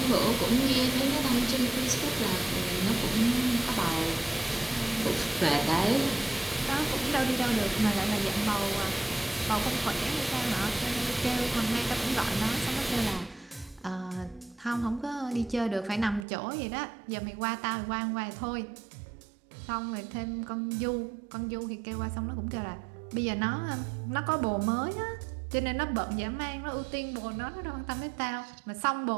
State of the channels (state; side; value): drops out; left; at 16.2 s